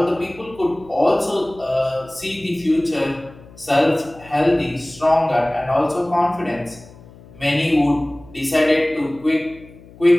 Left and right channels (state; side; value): noise; left; hum, 22 dB below the sound